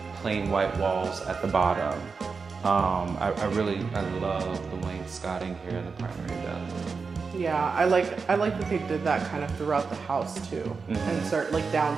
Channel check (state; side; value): quieter; left; 4.9 dB